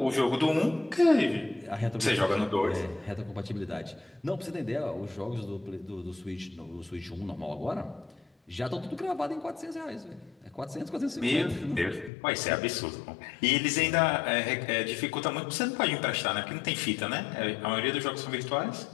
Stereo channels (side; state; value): right; drops out; at 12.1 s